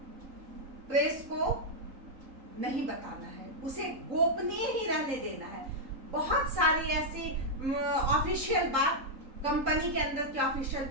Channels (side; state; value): left; late; 3.7 ms